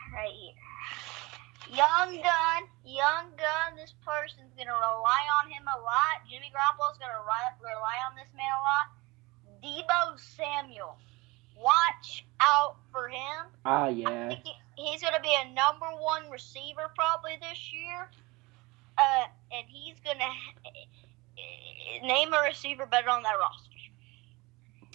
right here. Young gun. This person's gonna rely on him a lot. Jimmy Garoppolo's gonna rely on this man a lot. Deebo Samuel. Watch out for him. Yeah. I think he's going to be a number one receiver probably this year. And he's going to name a receiver better on that roster.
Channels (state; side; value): quieter; left; 23.5 dB